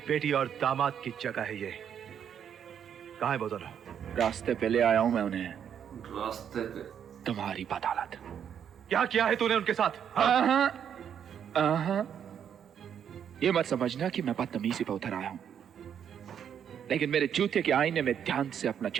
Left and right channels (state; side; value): quieter; left; 8.6 dB